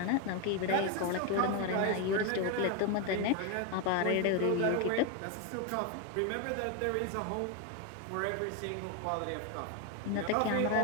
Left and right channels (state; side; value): different; both; correlation 0.01